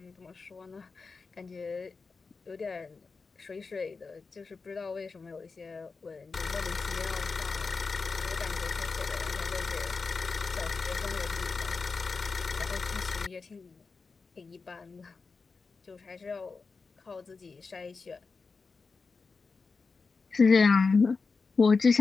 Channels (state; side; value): quieter; right; 4.5 dB